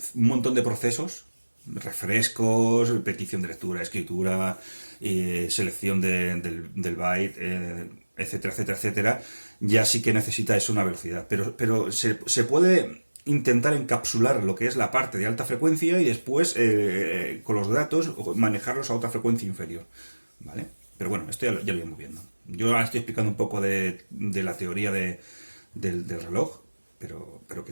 un montón de procesos, refrescos, petición de lectura, escritura, selección del byte, etcétera, etcétera, etcétera, ya sí que necesita eso una velocidad. Pero se puede intentar encapsular lo que es la parte de alta frecuencia y después, con los datos, manejarlos a otra frecuencia inferior. ¿Vale? Pero bueno, esto ya lo iremos viendo. Yo ahora estoy explicando un poco de la teoría del reloj, pero que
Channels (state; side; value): inverted; both; correlation -1.00